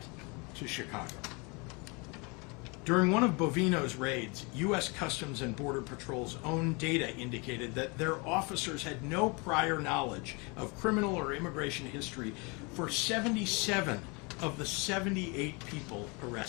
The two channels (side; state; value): right; quieter; 29.8 dB